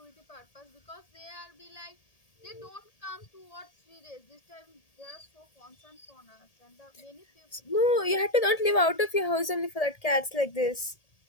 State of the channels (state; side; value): late; right; 1.8 ms